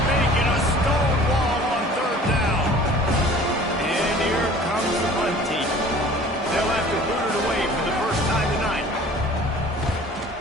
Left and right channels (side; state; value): both; normal; correlation 0.47